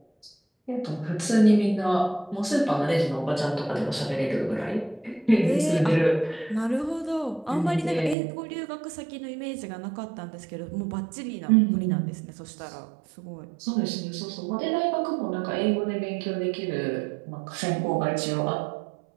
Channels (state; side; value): drops out; left; at 8.2 s